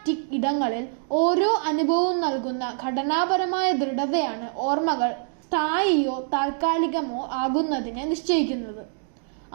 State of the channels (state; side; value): silent; left; digital silence